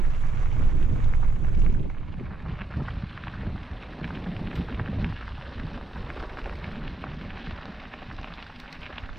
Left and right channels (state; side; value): quieter; left; 3.2 dB